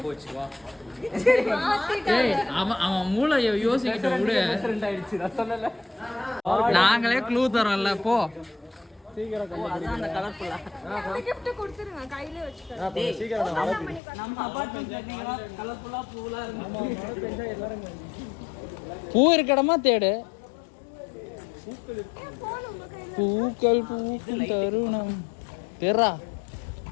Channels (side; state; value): right; drops out; at 14.0 s